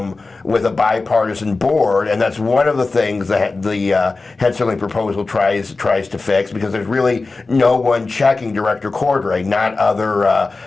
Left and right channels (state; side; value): quieter; right; 3.7 dB